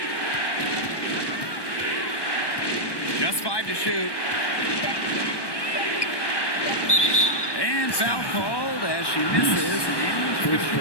Just 5 to shoot. And foul called as she misses. And First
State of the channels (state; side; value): late; right; 1.2 ms